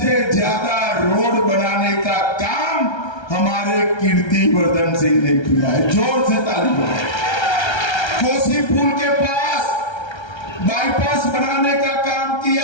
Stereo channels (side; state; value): right; late; 1.3 ms